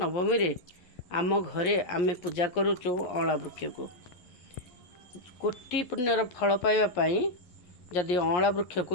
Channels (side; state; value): right; late; 11 ms